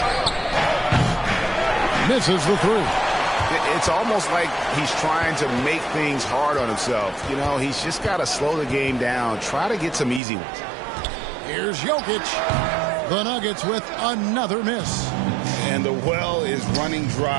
Misses the 3. It's almost like he's trying to make things hard on himself. You know, he's just got to slow the game down. Try to get some easy ones. Here's Jokic. The Nuggets with another miss. And the well is running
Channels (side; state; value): left; drops out; at 10.2 s